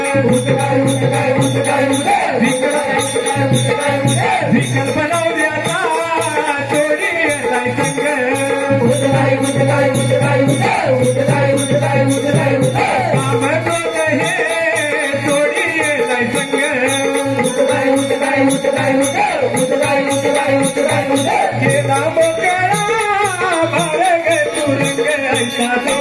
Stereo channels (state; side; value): identical; both; correlation 1.00